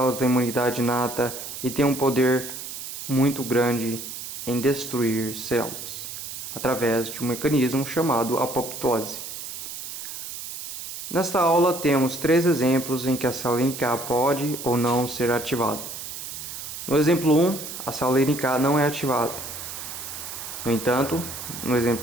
da imunidade inata e têm um poder muito grande em destruir células, através de um mecanismo chamado apoptose. Nesta aula temos 3 exemplos em que a célula NK pode ou não ser ativada. No exemplo 1, a célula NK não é ativada. No entanto, no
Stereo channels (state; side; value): noise; right; hiss, 9 dB below the sound